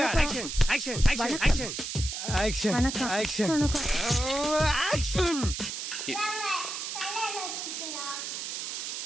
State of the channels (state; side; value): noise; right; hiss, 5 dB below the sound